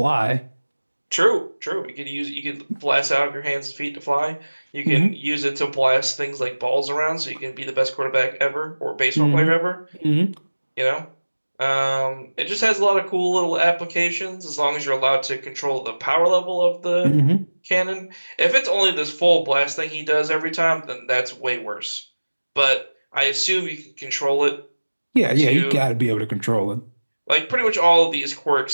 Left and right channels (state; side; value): inverted; both; correlation -1.00